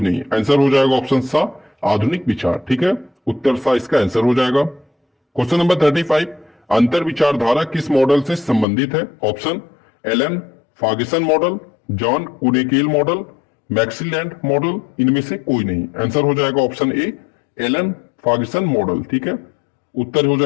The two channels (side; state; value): right; drops out; at 8.7 s